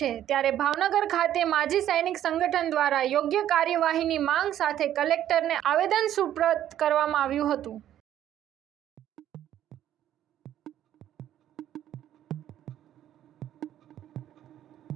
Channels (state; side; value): quieter; left; 11.5 dB